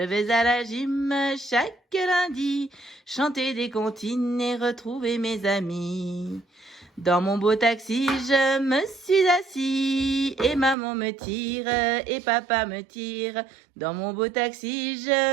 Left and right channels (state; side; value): drops out; left; at 10.8 s